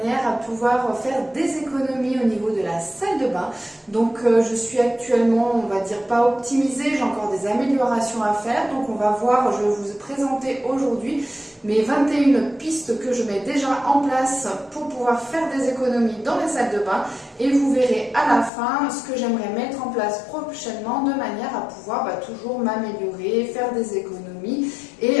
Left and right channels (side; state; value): right; drops out; at 18.5 s